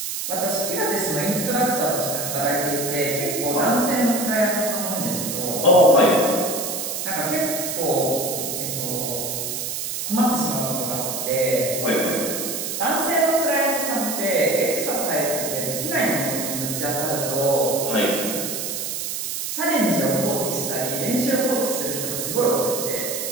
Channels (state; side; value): noise; right; hiss, 4 dB below the sound